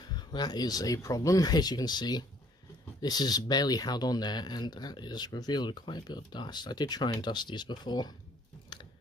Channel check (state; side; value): normal; both; correlation 0.60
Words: that is a problem. As you can see, this is barely held on there, and that is revealed quite a bit of dust. I did try and dust these before.